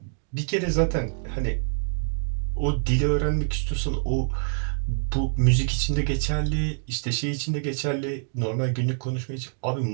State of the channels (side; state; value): left; silent; digital silence